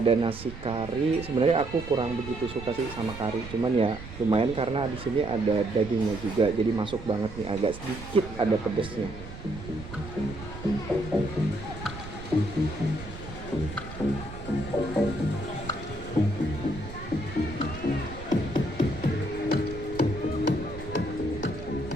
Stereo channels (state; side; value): noise; right; rumble, 12 dB below the sound